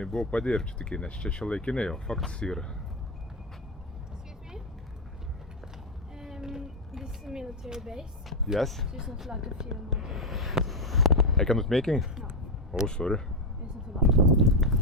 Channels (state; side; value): normal; both; correlation 0.06